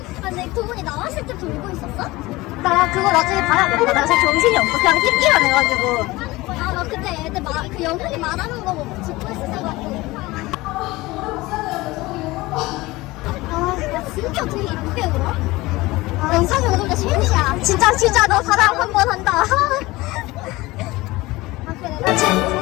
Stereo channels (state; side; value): quieter; right; 20.3 dB